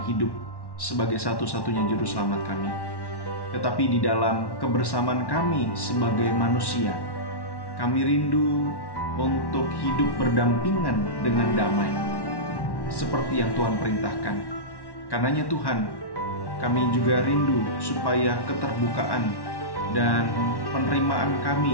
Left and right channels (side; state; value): right; late; 1.1 ms